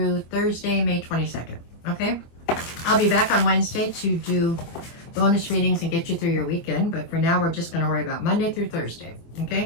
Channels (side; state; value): right; late; 24 ms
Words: Thursday, May 22nd. Okay? I'll be back on Wednesday to do bonus readings and get you through your weekend, but for now, we're just going to worry about Monday through Thursday.